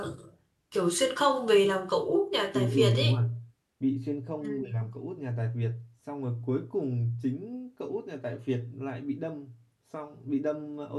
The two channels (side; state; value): both; identical; correlation 1.00